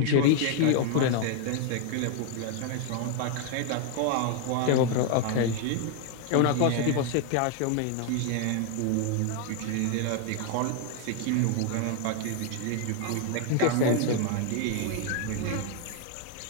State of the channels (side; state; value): both; different; correlation 0.00